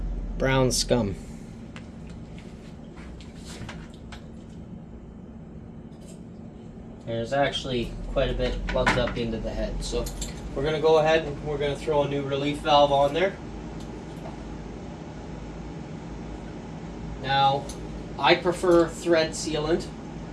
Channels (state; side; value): identical; both; correlation 1.00